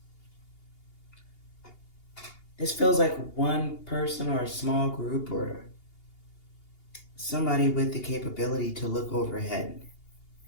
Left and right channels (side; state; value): right; late; 2.8 ms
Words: This feels like one person or a small group or somebody with the capability to look overhead